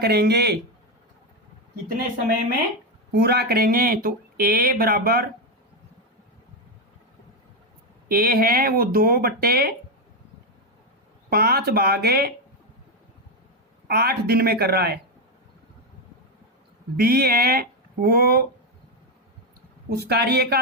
कितने समय में पूरा करेंगे? तो ए बराबर ए है वो 2/5 भागे 8 दिन में कर रहा है। बी है वो उस कार्य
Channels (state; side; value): normal; both; correlation 0.08